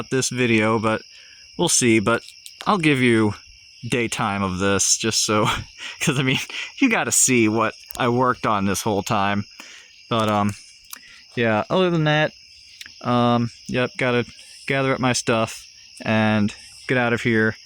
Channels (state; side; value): identical; both; correlation 1.00